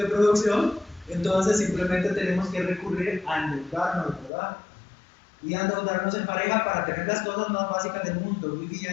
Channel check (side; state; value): right; drops out; at 4.3 s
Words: producción, entonces simplemente tenemos que recurrir a endeudarnos, ¿verdad? Y endeudarnos en pareja para tener las cosas más básicas del mundo,